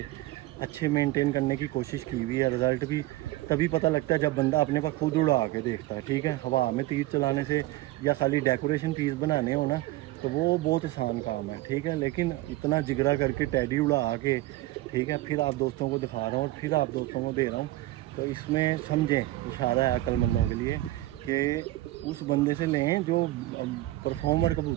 अच्छे मेंटेन करने की कोशिश की हुई है। रिज़ल्ट भी तभी पता लगता है जब बंदा अपने पास खुद उड़ा के देखता है। ठीक है, हवा में तीर चलाने से या खाली डेकोरेशन पीस बनाने हो ना, तो वो बहुत आसान काम है, ठीक है। लेकिन इतना जिगरा करके टैडी उड़ा के, ठीक है, फिर आप दोस्तों को दिखा रहा हूँ और फिर आप दोस्तों को दे रहा हूँ। तो इसमें समझें, इशारा है अक्लमंदों के लिए कि उस बंदे से लें जो परफॉर्मर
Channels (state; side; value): quieter; left; 17.4 dB